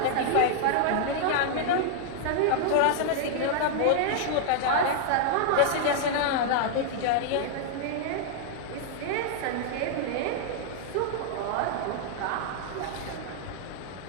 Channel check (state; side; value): different; both; correlation -0.01